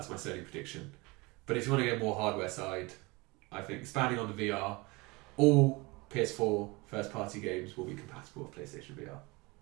my Sony prediction. But if you want to get more hardware side, I think expanding on the VR, all PS4 first-party games will be compatible with PlayStation VR.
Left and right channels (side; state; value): left; quieter; 24.9 dB